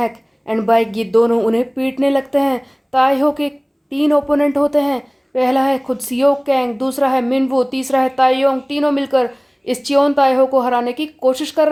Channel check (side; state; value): both; identical; correlation 1.00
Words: एंड बाइक ये दोनों उन्हें पीटने लगते हैं। ताइहो के 3 ओपोनेंट होते हैं। पहला है खुद सियोक कैंग, दूसरा है मिनवू, तीसरा है ताइयोंग। तीनों मिलकर इस चियोन ताइहो को हराने की कोशिश कर